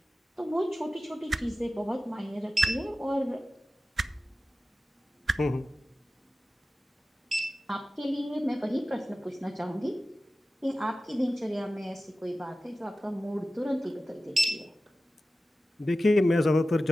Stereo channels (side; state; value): both; normal; correlation 0.95